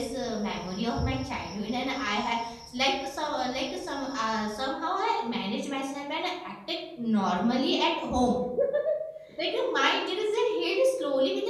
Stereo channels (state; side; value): identical; both; correlation 1.00